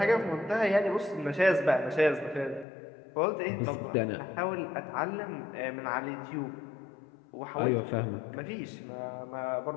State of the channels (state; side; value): drops out; right; at 2.7 s